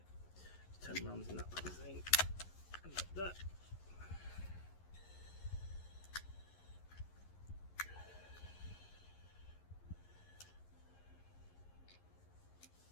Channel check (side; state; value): right; late; 11 ms